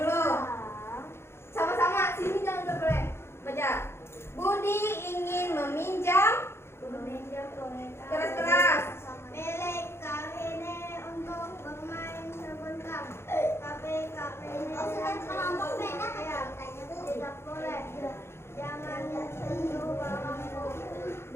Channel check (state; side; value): late; right; 0.12 ms